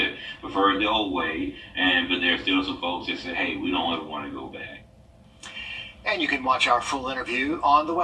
prefer it the old way, but there's still some folks that say, hey, we don't ever want to go back. And you can watch our full interview on the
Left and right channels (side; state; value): both; identical; correlation 1.00